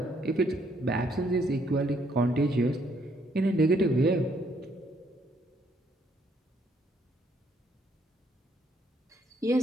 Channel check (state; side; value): normal; both; correlation 0.69